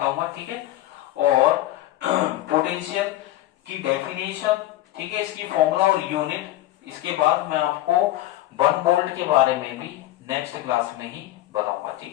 ठीक है, और पोटेंशियल की डेफिनेशन, ठीक है, इसकी फॉर्मूला और यूनिट, इसके बाद मैं आपको 1 वोल्ट के बारे में भी नेक्स्ट क्लास में ही बताऊंगा।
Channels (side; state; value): right; quieter; 15.0 dB